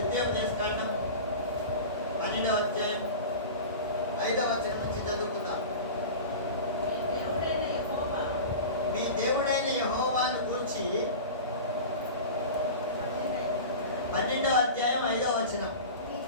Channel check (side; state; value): both; inverted; correlation -0.31